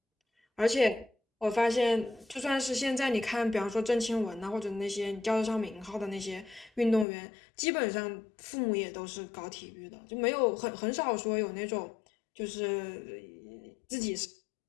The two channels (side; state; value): right; drops out; at 7.1 s